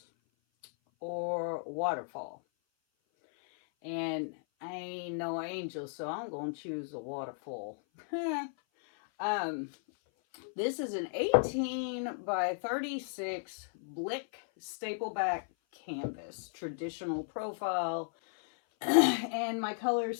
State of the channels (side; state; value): right; silent; 55 dB below the other